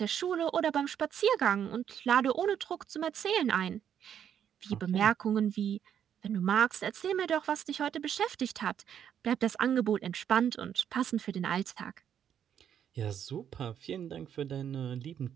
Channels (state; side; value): quieter; left; 9.1 dB